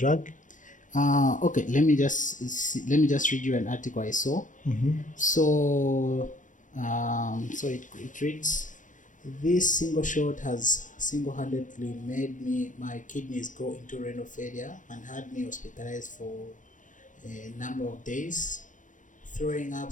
Okay, let me just read you an article I saw. So it reads, this single shot has single-handedly made my kidneys go into renal failure and had me hospitalized for a number of days, throwing up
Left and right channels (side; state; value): right; late; 0.37 ms